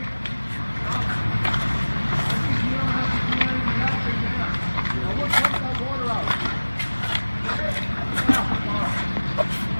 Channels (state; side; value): inverted; both; correlation -1.00